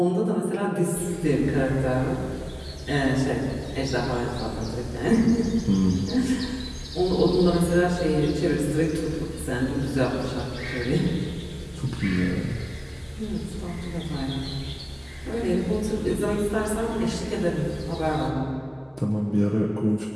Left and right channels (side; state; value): both; identical; correlation 1.00